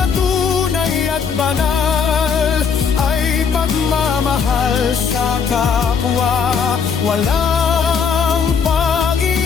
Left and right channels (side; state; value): right; quieter; 6.3 dB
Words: tunay at banal ay pagmamahal sa kapwa. Walang